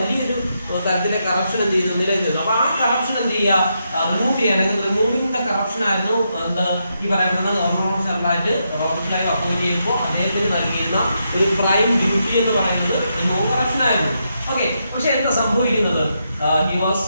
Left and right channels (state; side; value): inverted; both; correlation -0.82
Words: തരത്തിലെ കറപ്ഷൻ എന്ത് ചെയ്തു, നിലനിന്നിരുന്നു. അപ്പൊ ആ കറപ്ഷൻ എന്ത് ചെയ്യുക, റിമൂവ് ചെയ്യുക, അല്ലെങ്കിൽ റിമൂവിംഗ് ദ കറപ്ഷൻ ആയിരുന്നു എന്താ ഈ പറയുന്നത് ഗവർണർ ഓഫ് ജനറലായിട്ട് റോബർട്ട് ക്ലൈവ് അപ്പോയിന്റ് ചെയ്യുമ്പോൾ അദ്ദേഹത്തിന് നൽകിയിരുന്ന ഒരു പ്രൈം ഡ്യൂട്ടി എന്ന് പറയുന്നത് റിമൂവ് കറപ്ഷൻ ആയിരുന്നു. ഓക്കെ, പക്ഷെ എന്താ സംഭവിക്കുന്നത്, he was